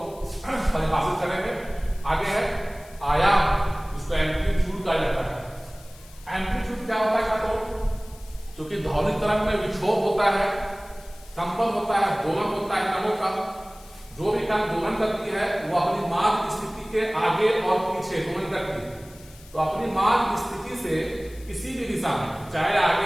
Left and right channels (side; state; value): left; noise; hiss, 23 dB below the sound